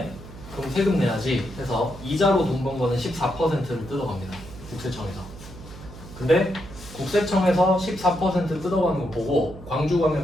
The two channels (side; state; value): right; noise; hum, 15 dB below the sound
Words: 그럼 세금 내야지 해서 이자로 돈 번 거는 14%를 뜯어갑니다. 국세청에서. 근데 국세청에서 14% 뜯어가는 거 보고